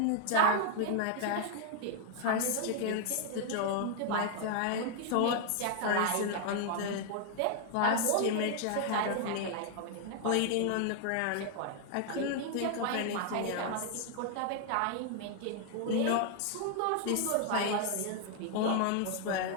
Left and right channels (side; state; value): both; different; correlation 0.00